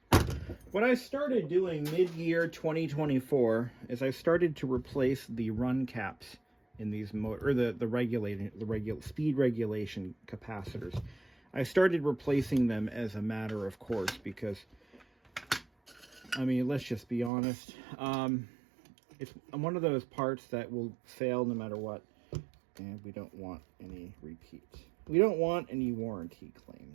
What I started doing mid-year 2024 is I started to replace the run caps in these the speed regulation capacitors. I started replacing them as a matter of course because, I mean, let's just be honest. It's one of those parts that will fail no matter what, and we don't want any repeats. We don't want any warranty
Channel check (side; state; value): left; drops out; at 17.3 s